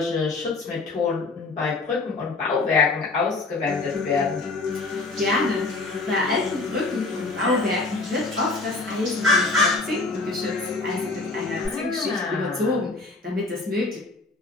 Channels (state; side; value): quieter; right; 3.4 dB